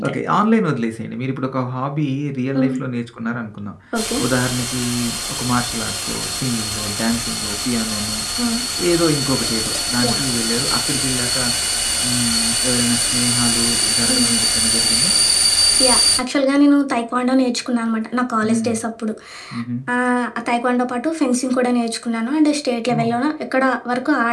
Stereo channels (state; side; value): identical; both; correlation 1.00